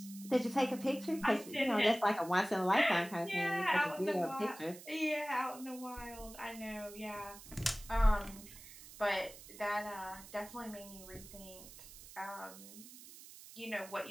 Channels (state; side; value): noise; right; hiss, 17 dB below the sound